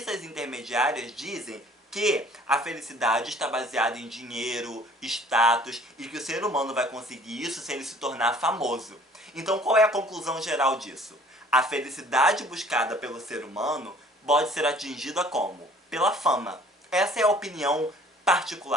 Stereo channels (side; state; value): both; normal; correlation 0.54